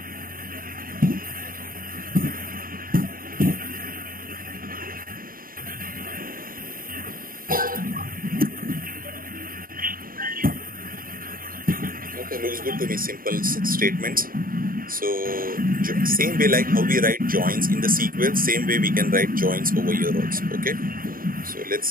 Looks good to me. Simple statements. So same way like how we write joins in the SQL, same way we can write joins over here also. Okay, so let's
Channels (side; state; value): left; late; 0.41 ms